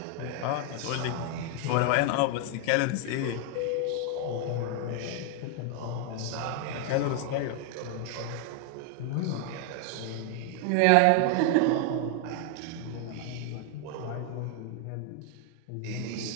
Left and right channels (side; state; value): both; different; correlation 0.00